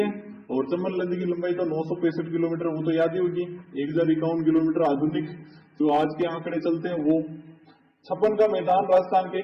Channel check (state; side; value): identical; both; correlation 1.00